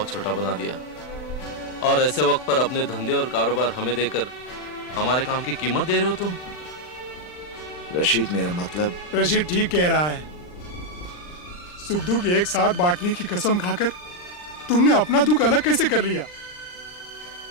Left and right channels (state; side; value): late; right; 39 ms